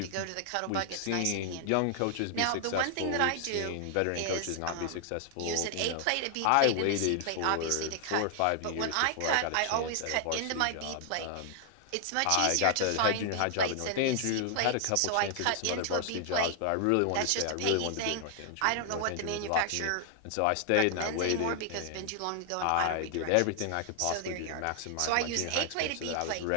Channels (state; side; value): different; both; correlation 0.00